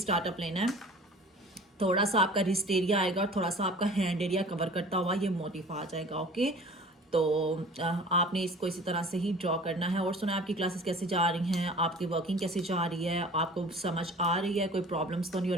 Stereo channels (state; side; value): normal; both; correlation 0.44